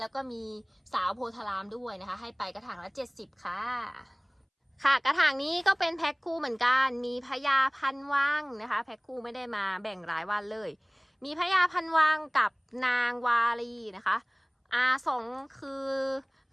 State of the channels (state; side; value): identical; both; correlation 1.00